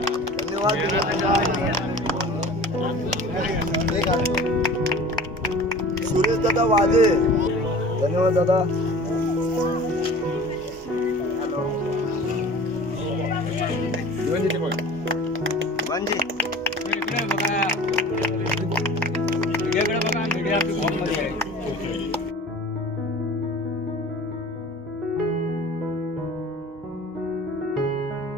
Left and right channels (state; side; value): normal; both; correlation 0.42